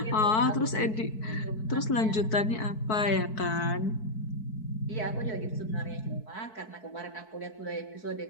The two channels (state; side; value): late; right; 4.6 ms